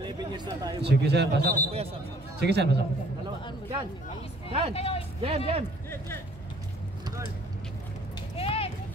Sige sir, pasok. Sige sir, pasok. Yan! Yan! Jam, jam!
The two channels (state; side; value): normal; both; correlation 0.58